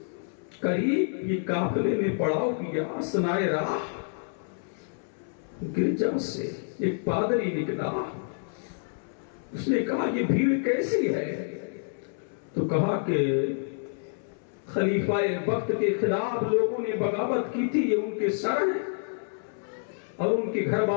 یہ قافلے نے پڑاؤ کیا. اثنائے راہ گرجا سے ایک پادری نکلا. اس نے کہا یہ بھیڑ کیسی ہے؟ تو کہا کہ خلیفہ وقت کے خلاف لوگوں نے بغاوت کی تھی یہ ان کے سر ہیں اور ان کے گھر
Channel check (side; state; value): right; silent; 59 dB below the other